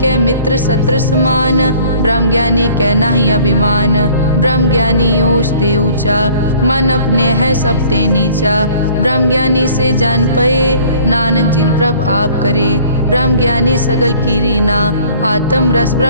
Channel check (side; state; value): both; inverted; correlation -0.53